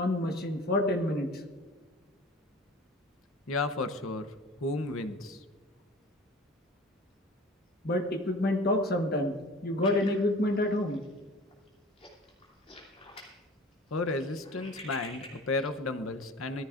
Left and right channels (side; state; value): both; normal; correlation 0.42